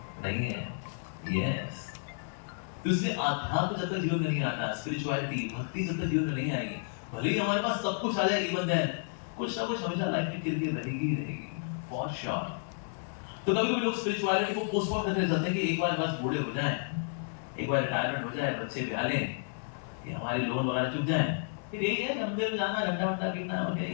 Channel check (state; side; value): silent; right; digital silence